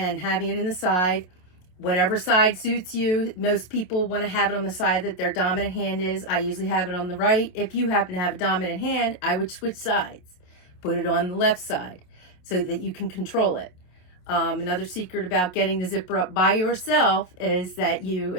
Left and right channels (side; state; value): right; late; 27 ms